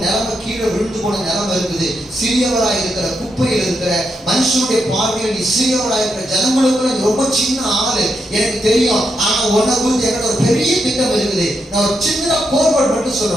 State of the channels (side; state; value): both; normal; correlation 0.82